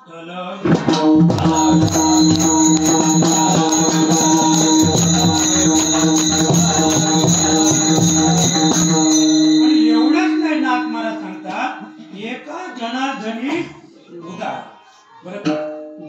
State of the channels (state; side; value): identical; both; correlation 1.00